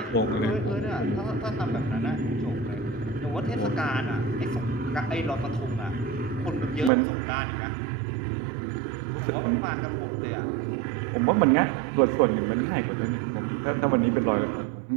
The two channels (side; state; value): left; drops out; at 6.9 s